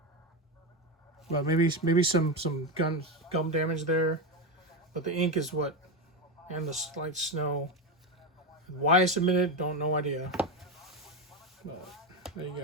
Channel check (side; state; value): both; normal; correlation 0.14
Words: But maybe some gum damage there. But the ink is what, and the slight snow. Why I submitted, no idea. But there you